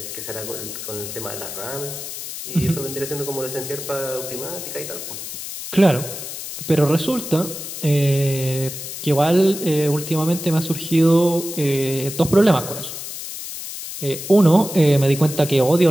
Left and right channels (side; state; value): left; noise; hiss, 8 dB below the sound